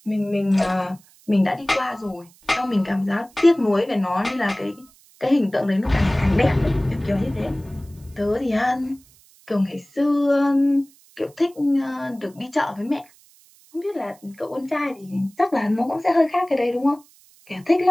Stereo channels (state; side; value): noise; right; hiss, 28 dB below the sound